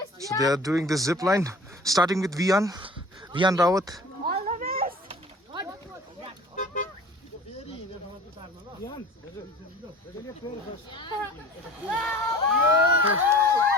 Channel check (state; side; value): normal; both; correlation 0.43